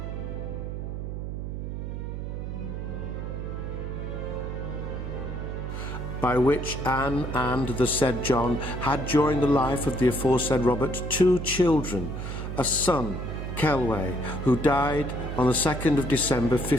By which Anne and the said John had during the life of the aforesaid Robert 2 children, a son, Kelway, who died on the 2nd of December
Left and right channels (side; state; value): right; noise; hum, 5 dB below the sound